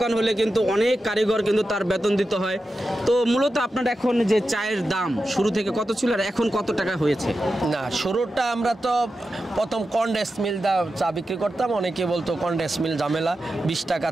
হলে কিন্তু অনেক কারিগর কিন্তু তার বেতন দিতে হয়। তো মূলত আপনার এখন যে চায়ের দাম শুরু থেকে কত ছিল আর এখন কত টাকা হয়েছে? না, শুরুটা আমরা তো প্রথম কন্ডেন্স মিল চা বিক্রি করতাম, অনেকে বলতো কন্ডেন্স মিল ঝামেলা, 20 টাকা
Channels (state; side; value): normal; both; correlation 0.91